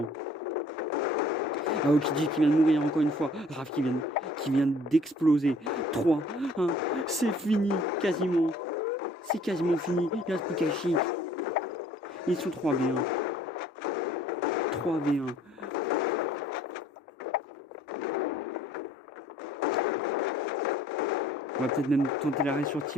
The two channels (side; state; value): both; normal; correlation 0.55